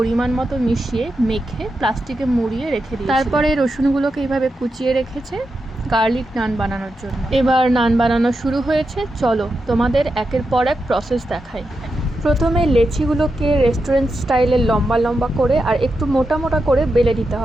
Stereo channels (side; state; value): both; normal; correlation 0.87